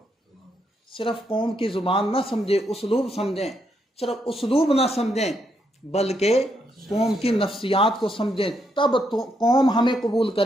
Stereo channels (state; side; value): normal; both; correlation 0.78